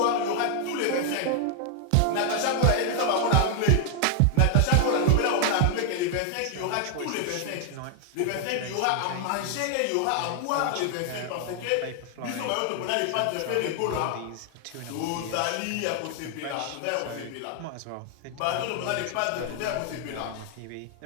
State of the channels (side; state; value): both; different; correlation 0.00